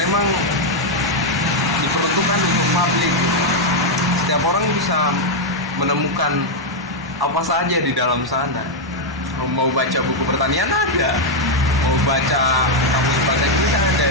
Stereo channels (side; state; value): both; normal; correlation 0.00